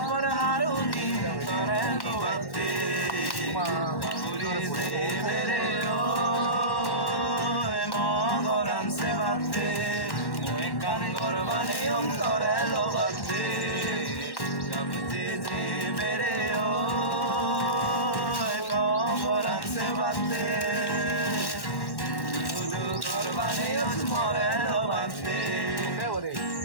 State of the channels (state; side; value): late; right; 1.1 ms